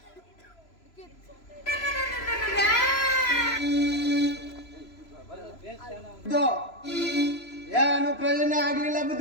ಏನು ಪ್ರಯೋಜನ ಆಗ್ಲಿಲ್ಲ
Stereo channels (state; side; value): late; right; 3.0 ms